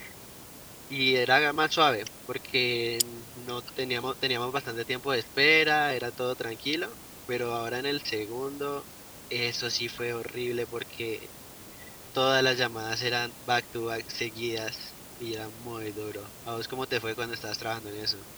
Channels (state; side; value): identical; both; correlation 1.00